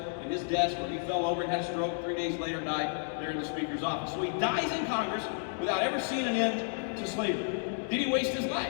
his desk where he fell over and had a stroke. 3 days later died there in the Speaker's office. So he dies in Congress without ever seeing an end to slavery. Did he waste his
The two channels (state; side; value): silent; right; digital silence